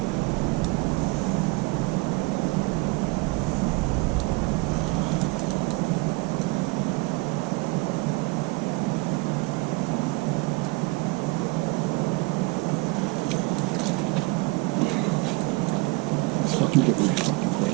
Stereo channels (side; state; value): left; quieter; 25.7 dB